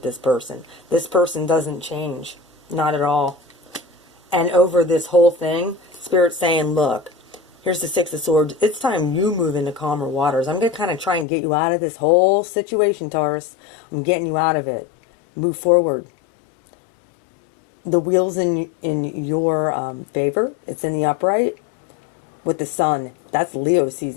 this person. This person doesn't change. Not at all. And over this whole thing, Spirit's saying, look, here's the Six of Swords. It's time you move into calmer waters. I'm going to kind of try and get you out of this whole situation, Taurus. I'm getting you out of it. Move forward. The wheel's in your favor. It's in the upright with the sun. That's Leo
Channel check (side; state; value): right; drops out; at 11.2 s